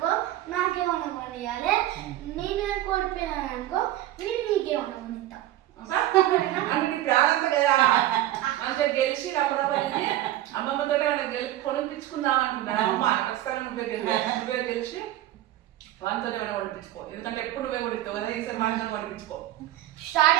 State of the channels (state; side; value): quieter; left; 14.3 dB